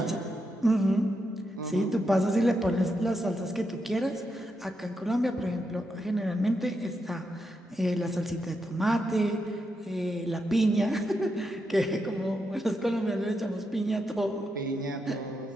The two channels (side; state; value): both; normal; correlation 0.84